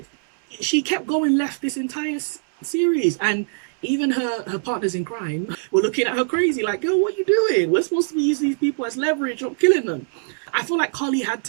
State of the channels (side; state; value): left; silent; 64 dB below the other